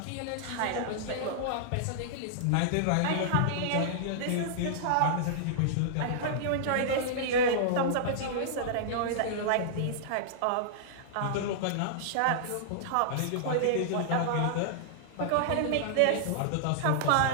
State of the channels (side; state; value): both; different; correlation -0.02